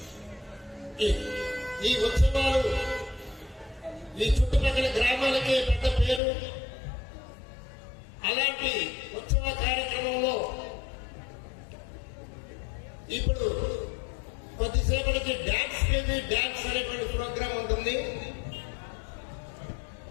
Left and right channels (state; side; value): drops out; right; at 6.2 s